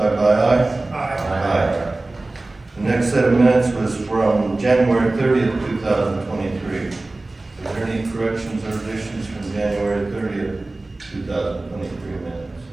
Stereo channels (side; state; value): left; quieter; 3.0 dB